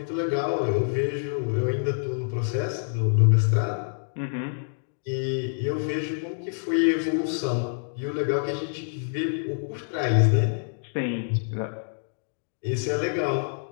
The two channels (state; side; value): silent; right; digital silence